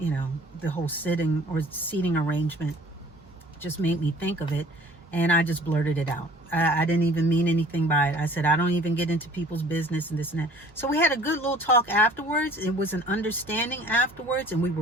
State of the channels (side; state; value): both; normal; correlation 0.51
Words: whole sitting or seating arrangement. Just made me think of it, and I just blurted it out. I didn't even mean anything by it. I said, I don't even get into people's business and this and that. So we had a good little talk afterwards. It was an understanding afterwards, and we